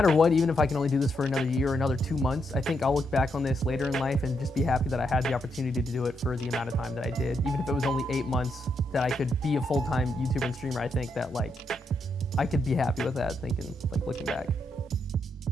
what, even if I can only do this for another year or another 2 months, I think I'll look back on this later in life and just be happy that I had the opportunity to do it for the amount of time that I did. Even if it was only 8 months that I could be a full-time YouTuber and streamer, I think that like I could be happy with that, thinking, like, looking back.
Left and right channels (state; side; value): normal; both; correlation 0.80